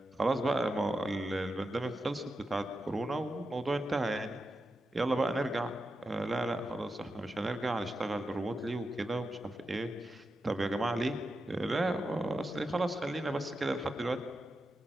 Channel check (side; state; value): both; normal; correlation 0.89